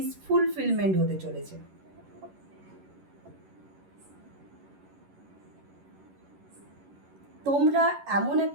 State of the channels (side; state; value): left; late; 11 ms